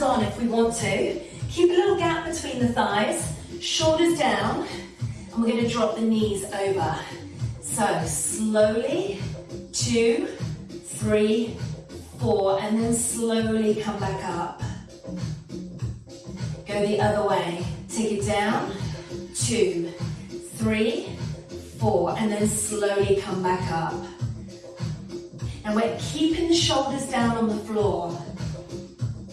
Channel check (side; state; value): both; identical; correlation 1.00